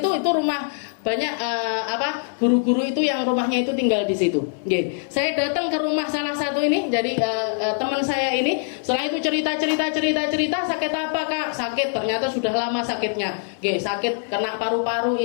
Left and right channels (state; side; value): silent; right; 63 dB below the other